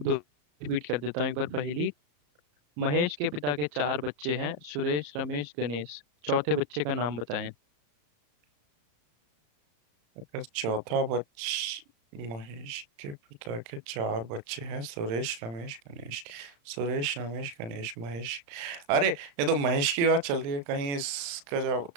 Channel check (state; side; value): late; left; 35 ms